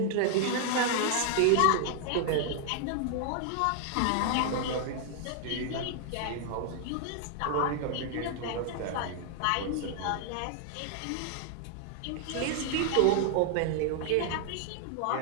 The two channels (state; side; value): different; both; correlation 0.00